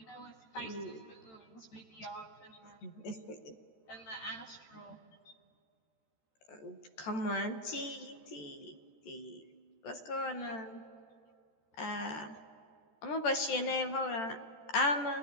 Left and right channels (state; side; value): late; right; 13 ms